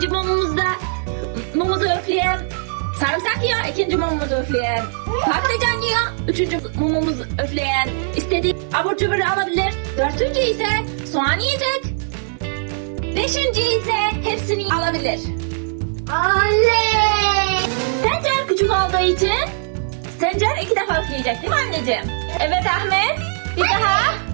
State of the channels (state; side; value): silent; left; digital silence